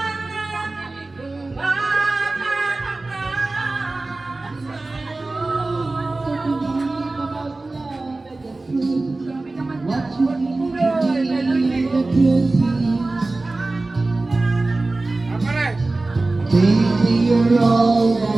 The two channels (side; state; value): left; quieter; 3.2 dB